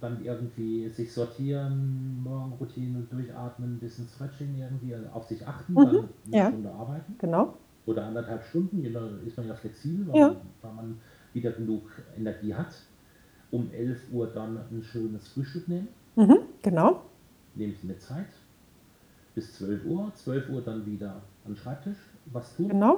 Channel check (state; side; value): identical; both; correlation 1.00